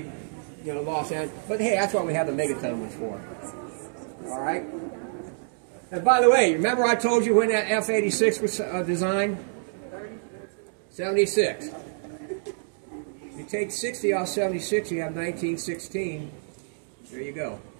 Los Angeles. But hey, that's what we have the megaton ones for. All right? And by the way, remember I told you when that F-86 was designed? 76. You take 60 off 76, you have 1916. There you go.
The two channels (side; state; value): left; silent; digital silence